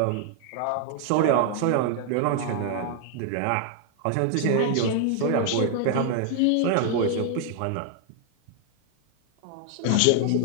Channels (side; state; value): both; different; correlation 0.00